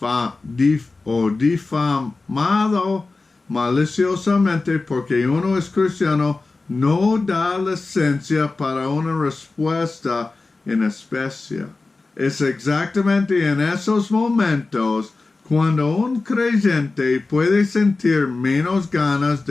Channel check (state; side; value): quieter; right; 3.6 dB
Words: o difamado maliciosamente porque uno es cristiano no da licencia para una respuesta en especie. Es exactamente en esos momentos cuando un creyente puede sentir menos ganas